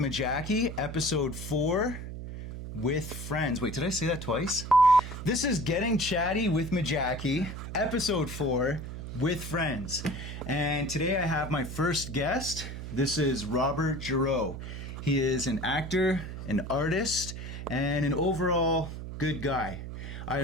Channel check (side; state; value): right; noise; hum, 8 dB below the sound